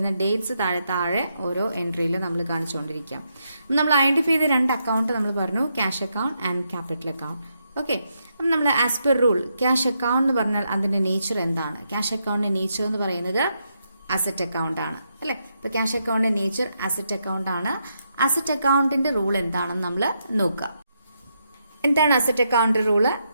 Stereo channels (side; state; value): both; inverted; correlation -0.81